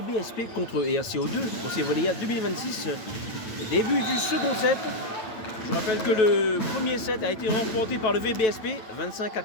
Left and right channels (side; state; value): right; late; 9.2 ms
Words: contre ERCO2 pour ces Volleyades 2026. Début du second set. Je rappelle que le premier set a été remporté par le VBSP 25-4.